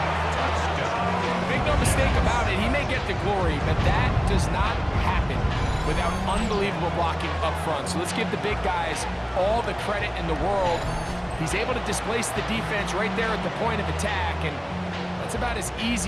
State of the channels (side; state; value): both; identical; correlation 1.00